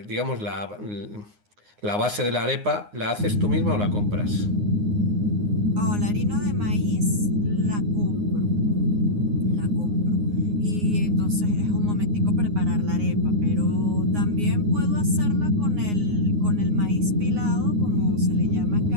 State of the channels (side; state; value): left; late; 9.6 ms